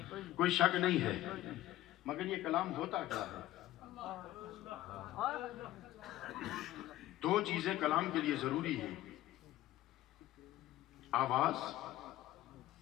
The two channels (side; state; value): right; quieter; 15.1 dB